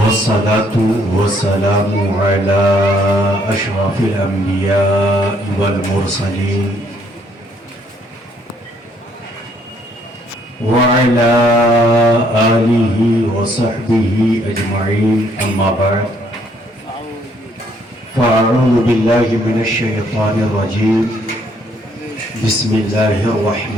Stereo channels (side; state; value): both; normal; correlation 0.67